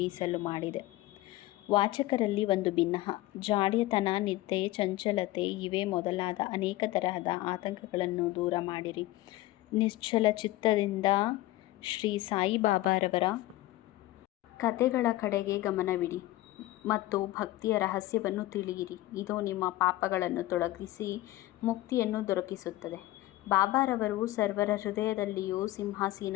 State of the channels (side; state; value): right; quieter; 17.0 dB